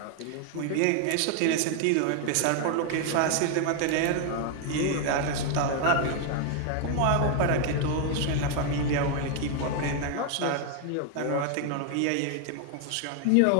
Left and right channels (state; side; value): different; both; correlation 0.00